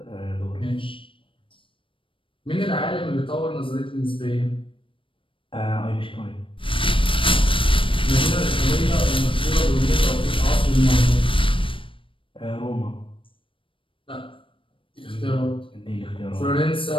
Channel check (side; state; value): right; late; 0.25 ms